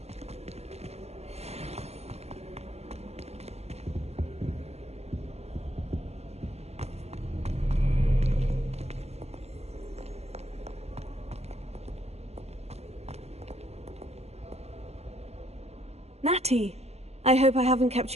Natty, I hope I haven't kept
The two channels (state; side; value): late; left; 0.30 ms